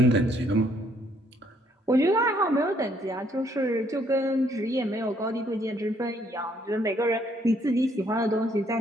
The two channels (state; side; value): normal; both; correlation 0.68